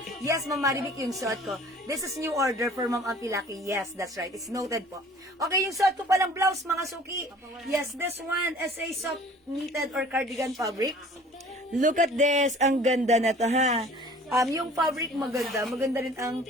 Yes, Ma'am Maribik, yung suot ko. This is new order for Ma'am Ampilaki. Yes, that's right. It's noted po. Okay, yung suot ko palang blouse, mga suki. Yes, this one is a soft knitted or cardigan fabric. Look at this. Ang ganda na to, ha? Yung fabric maganda. Maganda rin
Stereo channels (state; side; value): normal; both; correlation 0.49